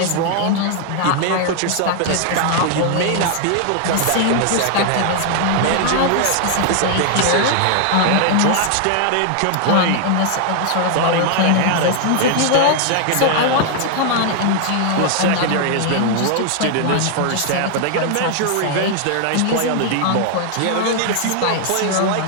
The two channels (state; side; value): different; both; correlation 0.00